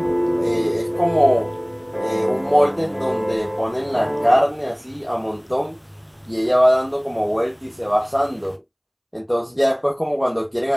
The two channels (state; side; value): identical; both; correlation 1.00